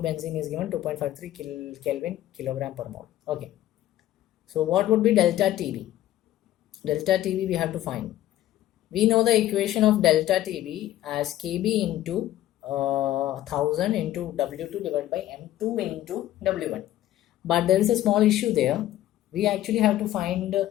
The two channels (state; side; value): quieter; right; 13.6 dB